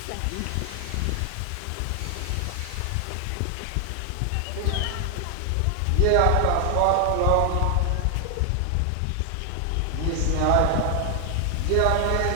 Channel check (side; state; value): both; different; correlation 0.00